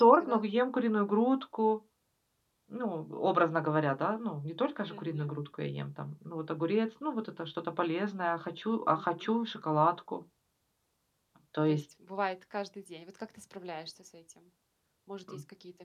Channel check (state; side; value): identical; both; correlation 1.00